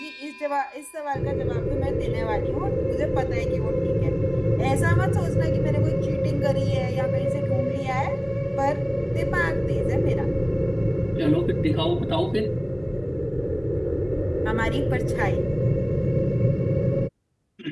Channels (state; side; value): identical; both; correlation 1.00